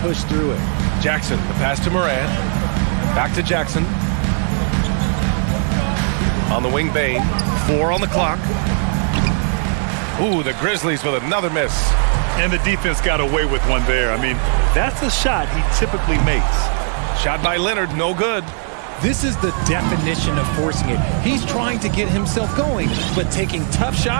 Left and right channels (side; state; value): left; silent; 56 dB below the other